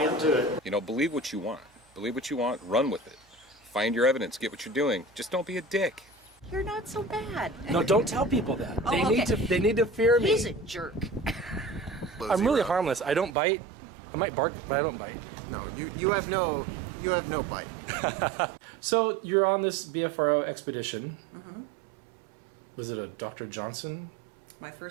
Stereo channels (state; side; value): drops out; left; at 13.4 s